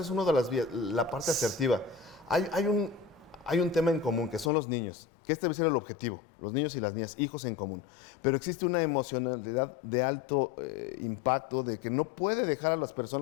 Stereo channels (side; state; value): right; drops out; at 4.5 s